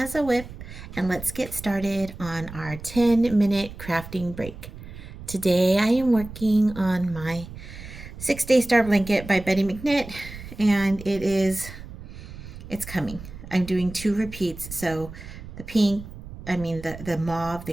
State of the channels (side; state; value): right; noise; rumble, 13 dB below the sound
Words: a whip, and let's get started on our 10-minute crafting break. Today I am working on my 6-Day Star Blanket by Betty McKnitt, and it's coming. I'm doing 2 repeats, so the pink, the mauve,